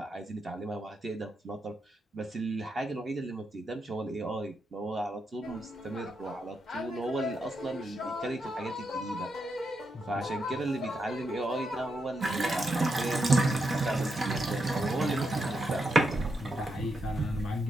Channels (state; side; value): normal; both; correlation 0.83